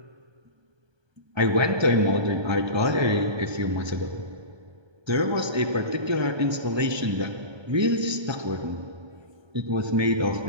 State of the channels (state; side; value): late; left; 1.2 ms